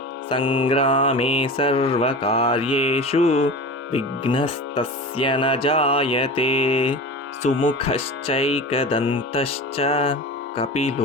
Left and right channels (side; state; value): both; normal; correlation 0.31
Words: सङ्ग्रामे सर्वकार्येषु विघ्नस्तस्य न जायते सुमुखश्चैकदन्तश्च